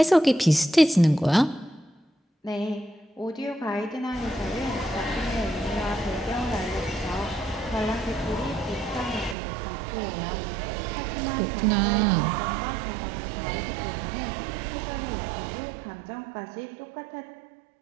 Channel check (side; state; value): left; drops out; at 9.3 s